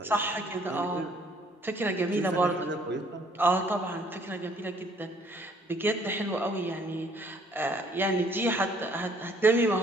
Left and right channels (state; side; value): normal; both; correlation 0.61